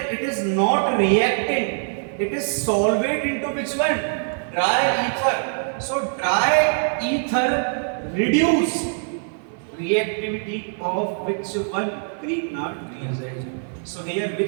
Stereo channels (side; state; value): left; silent; 57 dB below the other